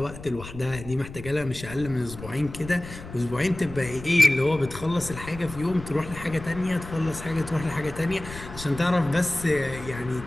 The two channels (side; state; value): left; noise; rumble, 13 dB below the sound